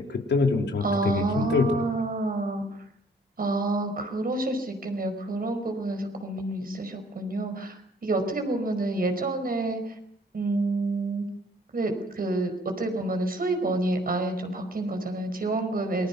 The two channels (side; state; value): both; normal; correlation 0.59